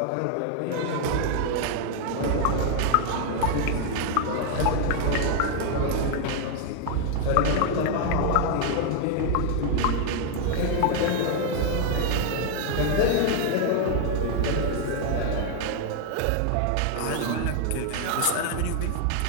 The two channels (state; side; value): different; both; correlation 0.00